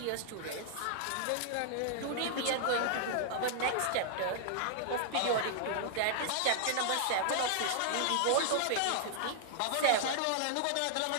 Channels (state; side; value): different; both; correlation -0.01